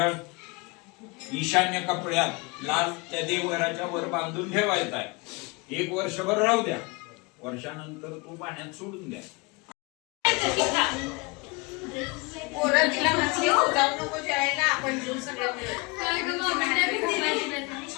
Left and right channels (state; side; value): quieter; right; 27.7 dB